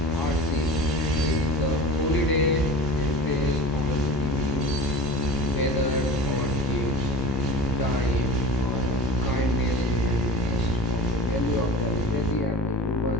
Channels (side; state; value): both; normal; correlation 0.34